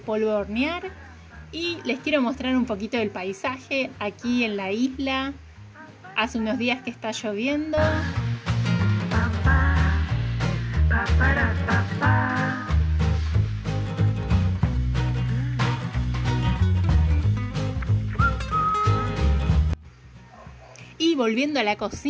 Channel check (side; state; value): both; identical; correlation 1.00